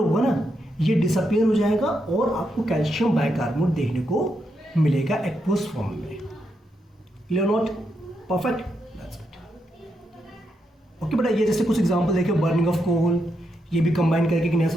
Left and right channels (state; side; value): normal; both; correlation 0.82